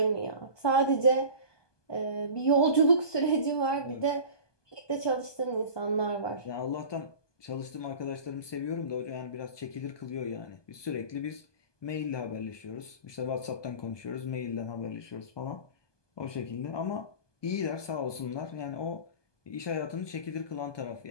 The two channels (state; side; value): late; right; 1.2 ms